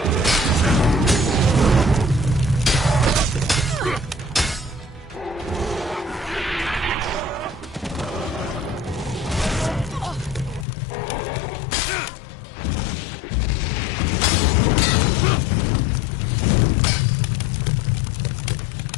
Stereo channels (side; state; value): right; drops out; at 10.7 s